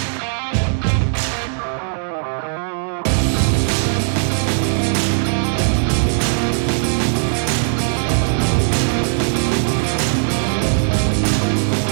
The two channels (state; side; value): silent; left; digital silence